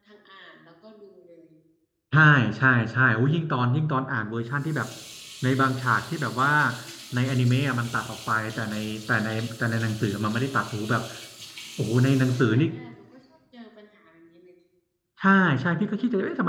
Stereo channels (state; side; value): identical; both; correlation 1.00